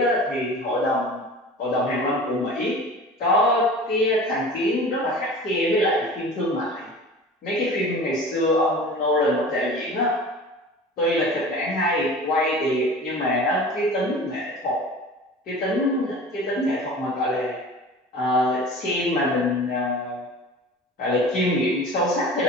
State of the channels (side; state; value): both; normal; correlation 0.39